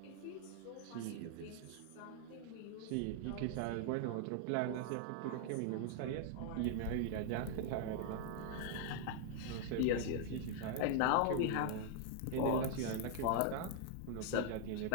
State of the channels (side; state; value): both; different; correlation 0.00